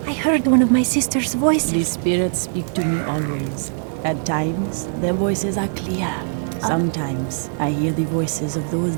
I heard one of my sister's voices. The spirits speak to me always. At times, their voices are clear. Sometimes, I hear the voices of those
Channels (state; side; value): silent; left; 65 dB below the other